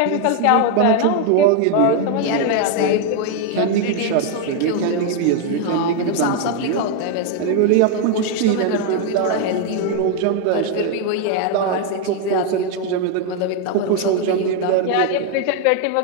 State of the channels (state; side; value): different; both; correlation 0.01